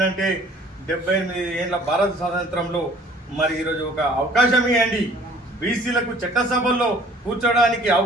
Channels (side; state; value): both; normal; correlation 0.53